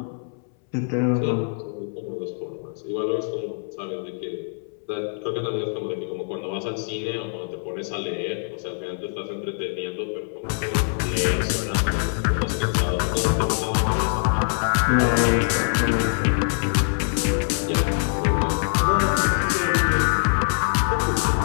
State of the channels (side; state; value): right; silent; 63 dB below the other